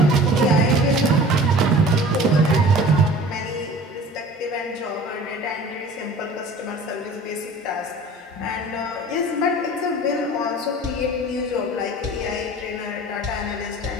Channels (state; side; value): normal; both; correlation 0.43